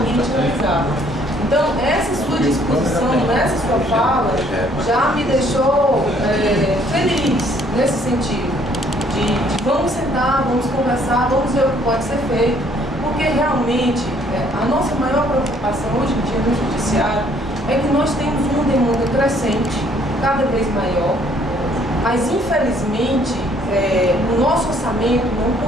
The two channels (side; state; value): both; normal; correlation 0.63